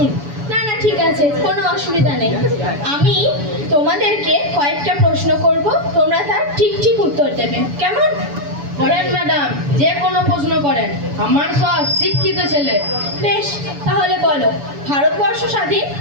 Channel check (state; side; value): late; left; 7.0 ms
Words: না না, ঠিক আছে, কোনো অসুবিধা নেই। আমি তোমাদেরকে কয়েকটা প্রশ্ন করব, তোমরা তার ঠিক ঠিক উত্তর দেবে, কেমন? করেন ম্যাডাম, যে কোনো প্রশ্ন করেন, আমার সব শিক্ষিত ছেলে। বেশ, তাহলে বলো, ভারতবর্ষ স্বাধীন